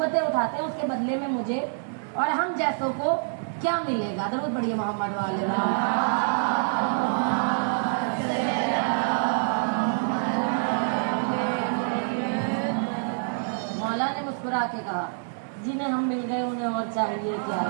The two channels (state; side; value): silent; left; 61 dB below the other